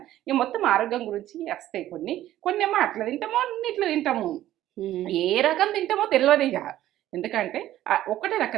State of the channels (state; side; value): quieter; left; 13.6 dB